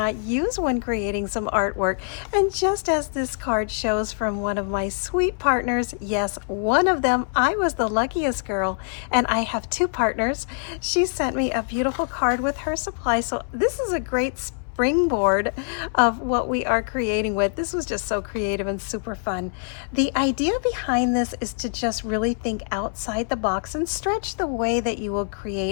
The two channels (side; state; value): right; silent; 62 dB below the other